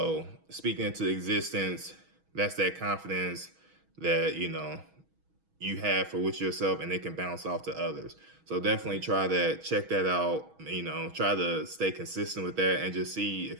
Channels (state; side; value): late; left; 6.2 ms